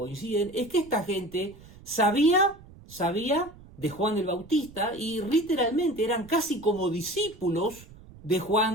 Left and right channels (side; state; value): right; noise; rumble, 21 dB below the sound